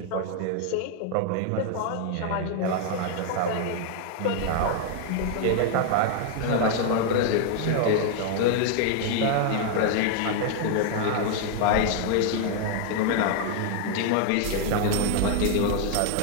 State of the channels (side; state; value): both; different; correlation 0.00